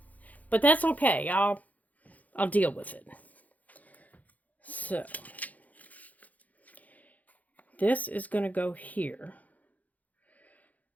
But that's okay. I'll deal with it. So this is going to go here.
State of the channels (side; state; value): right; late; 0.077 ms